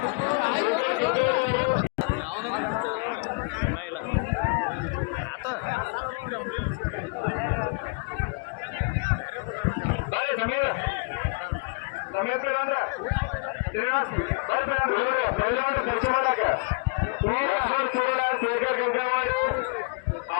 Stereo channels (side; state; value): right; quieter; 32.7 dB